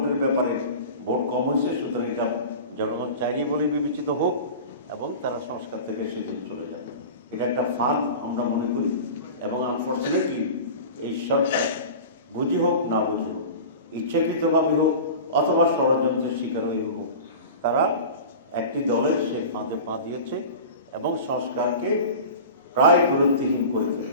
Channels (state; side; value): inverted; both; correlation -0.34